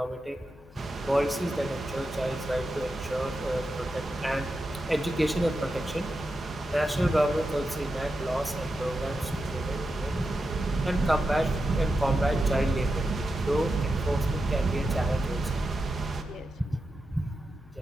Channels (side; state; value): both; normal; correlation 0.89